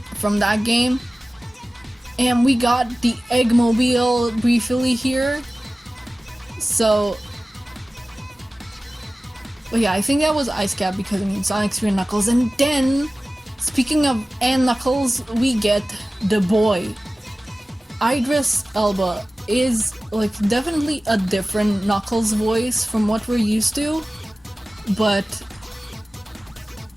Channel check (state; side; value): normal; both; correlation 0.97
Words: from that game. And we got the Eggmobile briefly here. So, but yeah, I think that was Ice Cap, because I mean Sonic 3 and Knuckles. And then, speaking of Knuckles, we get the boy. Idris Elba is like definitely a different Knuckles voice from what we're used to, but